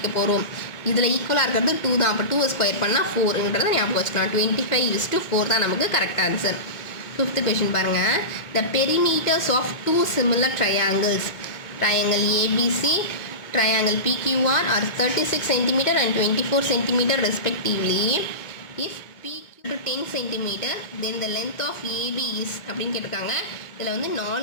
போகிறோம். இதில் ஈக்குவலாக இருக்கிறது 2 தான். அப்போ 2 ஸ்கொயர் பண்ணால் 4ன்றதை ஞாபகம் வச்சுக்கலாம். 25:4 தான் நமக்கு கரெக்ட் ஆன்சர். ஃபிஃப்த் கொஷின் பாருங்கள். The perimeters of 2 similar triangles, triangle ABC, triangle PQR are 36 cm and 24 cm respectively. If PQ to 10 cm, then the length of AB is அப்படின்னு கேட்டிருக்காங்க. இதில் வந்து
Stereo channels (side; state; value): right; late; 1.8 ms